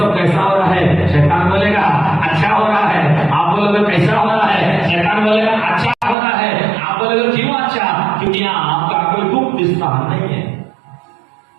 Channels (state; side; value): drops out; left; at 6.2 s